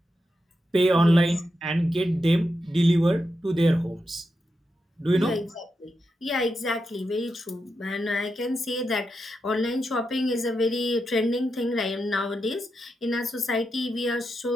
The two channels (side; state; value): both; normal; correlation 0.87